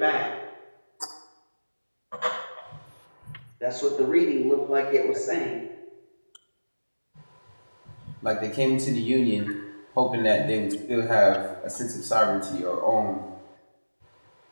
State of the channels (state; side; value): inverted; both; correlation -1.00